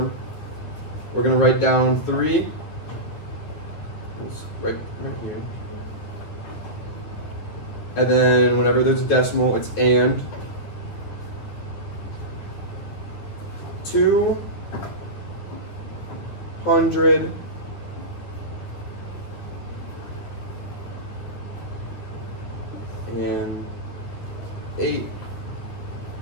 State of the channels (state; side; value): late; right; 9.7 ms